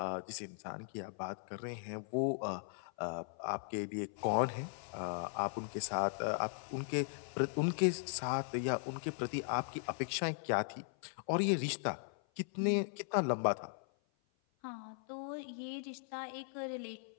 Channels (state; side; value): silent; right; 52 dB below the other